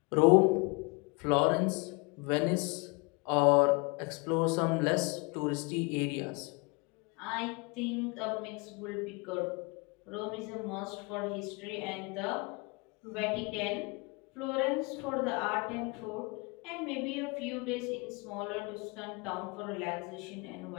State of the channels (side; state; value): right; quieter; 29.3 dB